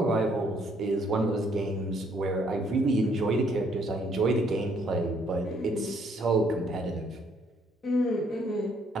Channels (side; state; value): both; normal; correlation 0.67